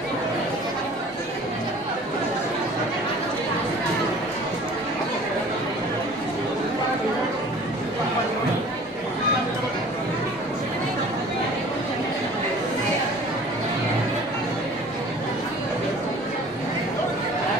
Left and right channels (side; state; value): both; normal; correlation 0.47